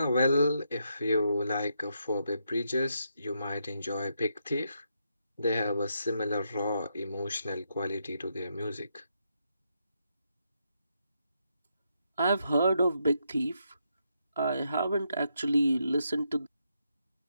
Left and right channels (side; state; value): both; inverted; correlation -0.80